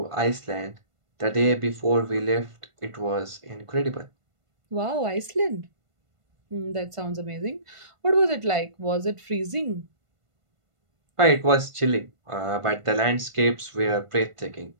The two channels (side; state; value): left; late; 1.5 ms